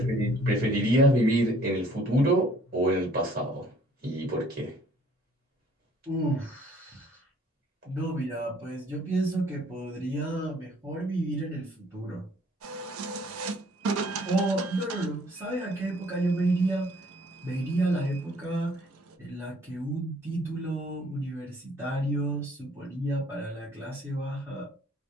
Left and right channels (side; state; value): both; normal; correlation 0.58